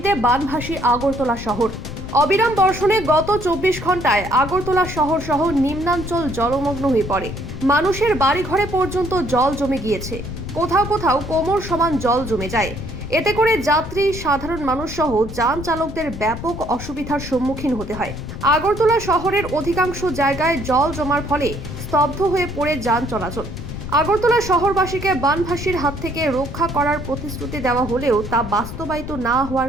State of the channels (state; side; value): noise; left; rumble, 9 dB below the sound